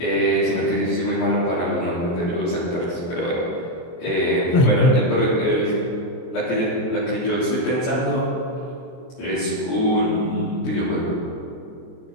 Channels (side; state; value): right; late; 23 ms